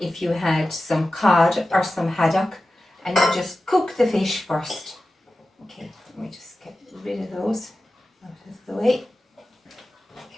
you had some cod or some haddock, and you just cook the fish first. Okay, let me just get rid of those out of the way.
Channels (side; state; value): both; normal; correlation 0.94